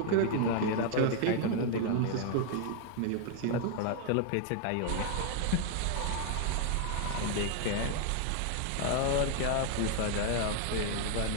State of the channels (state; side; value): different; both; correlation 0.00